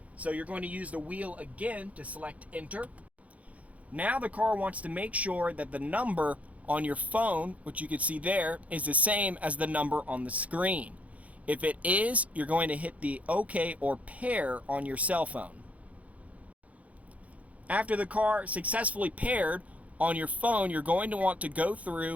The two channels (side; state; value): left; late; 0.068 ms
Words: so you're going to use the wheel again to select enter. Now the car wants to make sure that the number on your phone, which you can see there, is the same as the number on the screen. If it is, you're going to hit the OK or pair on your cell phone. After the car successfully paired on your phone, you're going to want to go